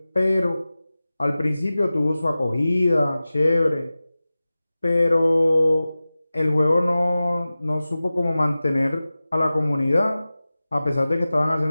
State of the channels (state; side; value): inverted; both; correlation -0.96